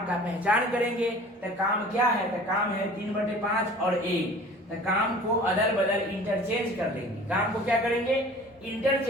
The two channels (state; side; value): normal; both; correlation 0.45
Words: का पहचान करेंगे, तो काम क्या है, तो काम है 3/5 और 1, तो काम को अदल बदल इंटरचेंज कर लेंगे। काम को क्या करेंगे,